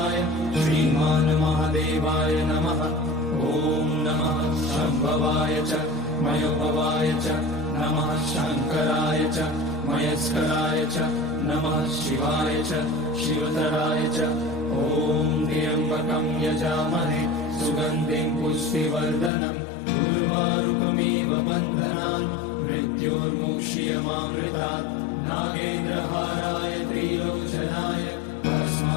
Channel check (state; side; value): drops out; right; at 19.3 s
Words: श्रीमान् महादेवाय नमः। ॐ नमः शम्भवाय च मयोभवाय च नमः शङ्कराय च मयस्कराय च नमः शिवाय च शिवतराय च। ॐ त्र्यम्बकं यजामहे सुगन्धिं पुष्टिवर्धनम् उर्वारुकमिव बन्धनान् मृत्योर्मुक्ष्यमामृतात्। नागेन्द्रहाराय त्रिलोचनाय